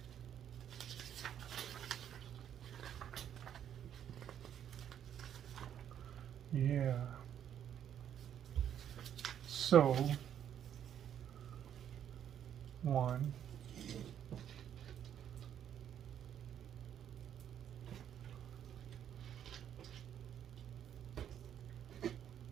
Yeah. So, 1.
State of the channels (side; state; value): left; quieter; 9.7 dB